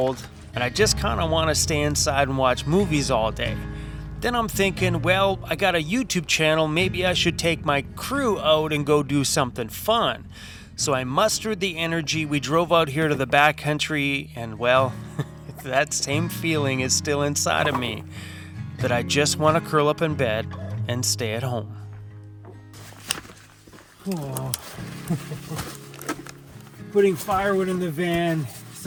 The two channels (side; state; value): both; identical; correlation 1.00